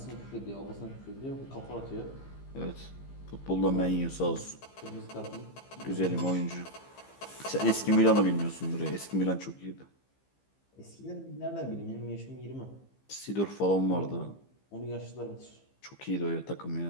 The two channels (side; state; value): right; late; 15 ms